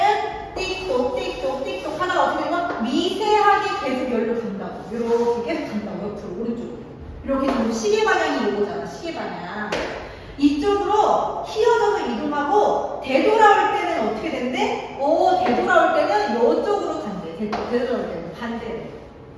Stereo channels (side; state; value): both; identical; correlation 1.00